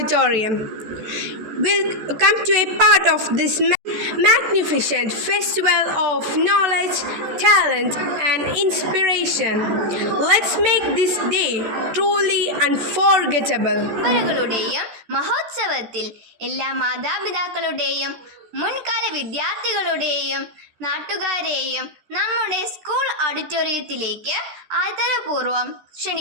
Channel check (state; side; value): late; left; 14 ms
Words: We'll come to a part of this magnificent festival of knowledge, talent, and inspiration. Let's make this day truly unforgettable. മഹോത്സവത്തിൽ എല്ലാ മാതാപിതാക്കളുടെയും മുൻകാല വിദ്യാർത്ഥികളുടെയും നാട്ടുകാരെയും നമ്മുടെ സ്കൂൾ ഓഡിറ്റോറിയത്തിലേക്ക് ആദരപൂർവ്വം